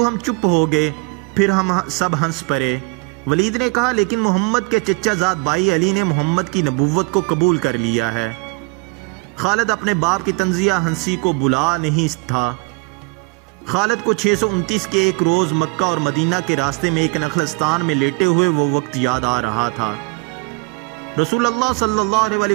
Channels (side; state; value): left; quieter; 29.1 dB